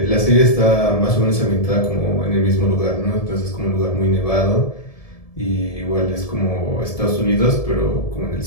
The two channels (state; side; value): late; right; 1.7 ms